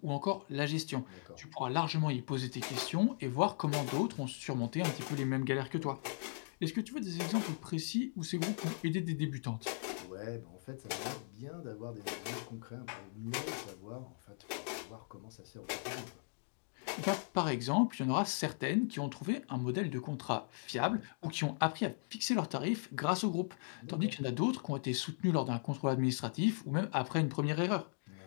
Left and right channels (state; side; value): silent; right; digital silence